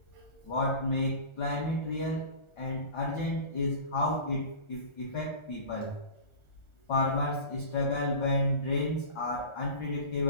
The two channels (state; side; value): late; right; 1.4 ms